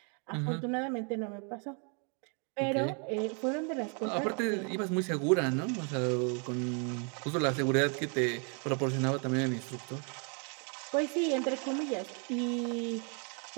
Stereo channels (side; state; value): left; quieter; 38.0 dB